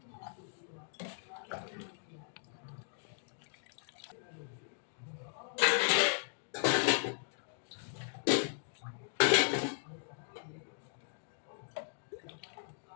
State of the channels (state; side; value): silent; right; digital silence